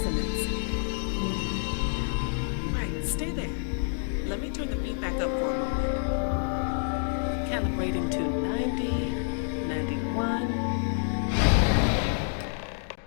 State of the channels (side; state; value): right; silent; digital silence